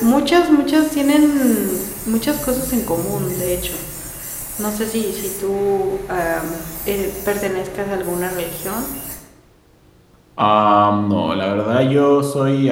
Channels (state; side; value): identical; both; correlation 1.00